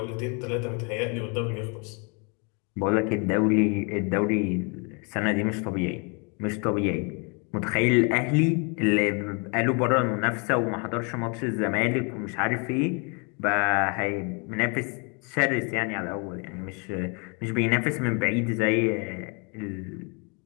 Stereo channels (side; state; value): right; quieter; 34.3 dB